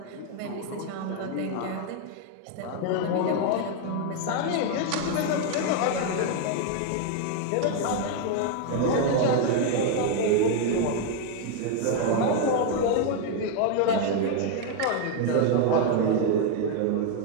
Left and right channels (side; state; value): both; different; correlation 0.00